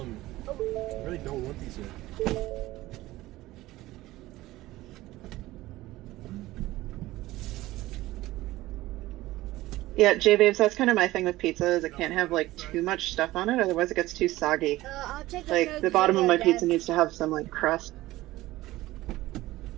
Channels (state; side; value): quieter; left; 17.4 dB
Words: these here. Yeah, J-Babes, that's kind of my thing with pizza, is it can't have, too much stuff on it, otherwise it gets too soggy. I'll take The bottom of my pizza needs to have some, crust.